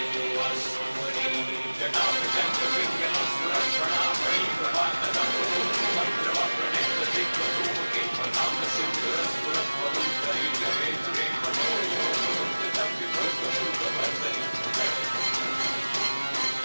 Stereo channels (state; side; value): inverted; both; correlation -1.00